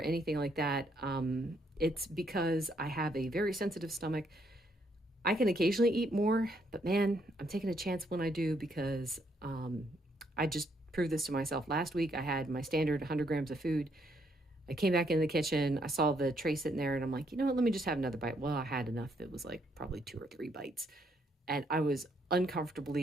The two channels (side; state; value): both; normal; correlation 0.72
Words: anything like that. It's because I have a very sensitive stomach. I can occasionally eat more, but man, I'm taking a chance when I do because I just proved this to myself. Last week, I had my standard 100 grams of food. I came back in the kitchen. I saw the tray sitting there and I'm like, let me just have another bite. Well, I had enough that was like probably 2 or 3 bites. And I was